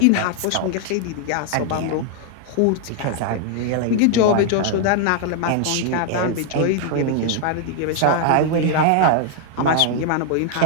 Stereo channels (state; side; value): different; both; correlation 0.00